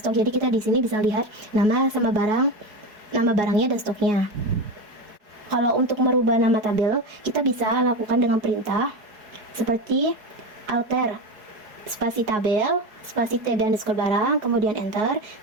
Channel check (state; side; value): late; left; 4.7 ms